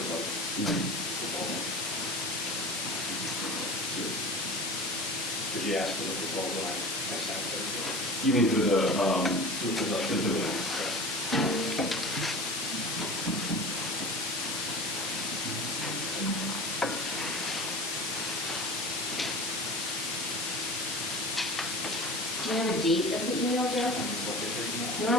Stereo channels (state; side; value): normal; both; correlation 0.35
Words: Did you ask for the proposal? I sent it. You mean for the Do you have a date of the email, Joe?